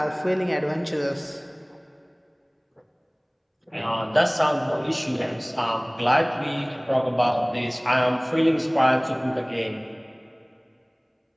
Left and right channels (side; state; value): both; identical; correlation 1.00